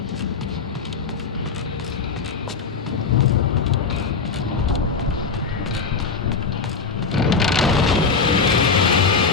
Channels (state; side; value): quieter; right; 5.0 dB